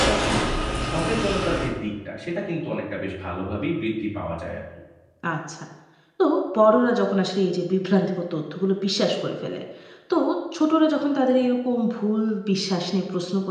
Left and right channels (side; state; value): both; identical; correlation 1.00